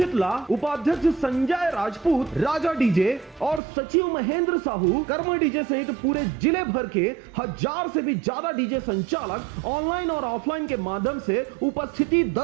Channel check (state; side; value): drops out; left; at 3.6 s